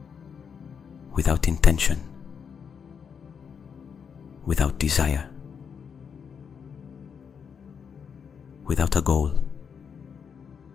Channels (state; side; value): quieter; right; 6.8 dB